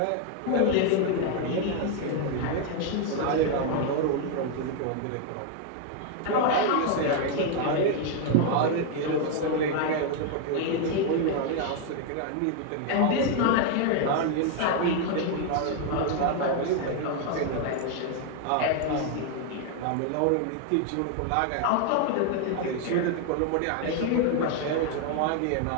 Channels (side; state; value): both; different; correlation 0.00